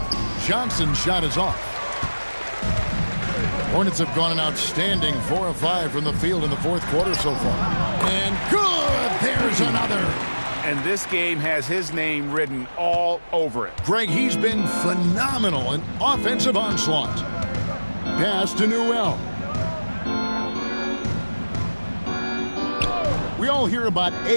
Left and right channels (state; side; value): inverted; both; correlation -1.00